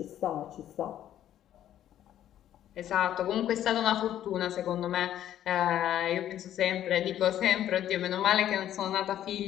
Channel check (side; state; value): right; quieter; 11.5 dB